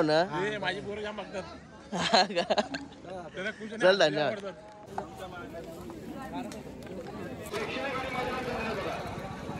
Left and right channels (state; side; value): identical; both; correlation 1.00